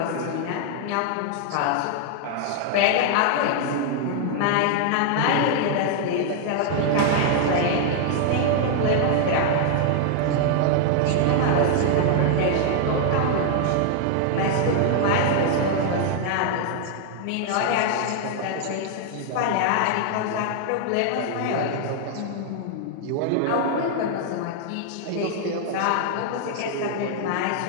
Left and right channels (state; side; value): different; both; correlation 0.00